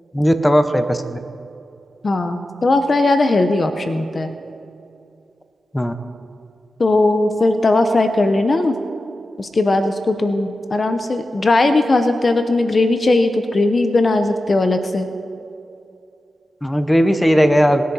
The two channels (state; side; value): normal; both; correlation 0.93